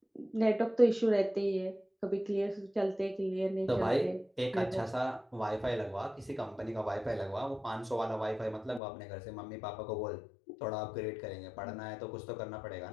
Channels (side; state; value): right; drops out; at 8.8 s